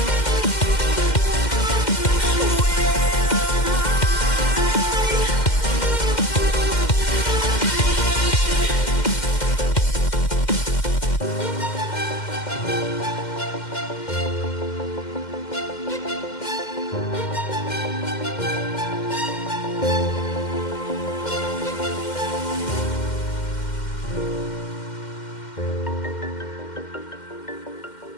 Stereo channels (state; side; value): late; right; 2.1 ms